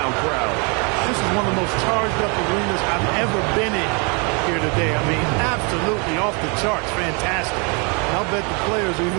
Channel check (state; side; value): quieter; left; 33.1 dB